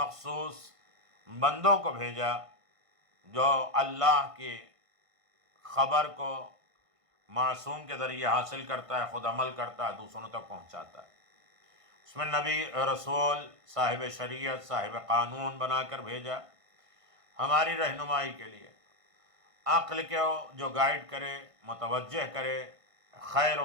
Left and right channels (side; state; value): left; late; 1.5 ms